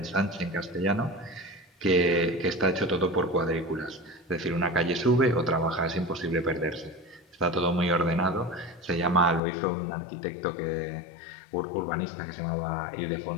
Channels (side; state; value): right; drops out; at 9.4 s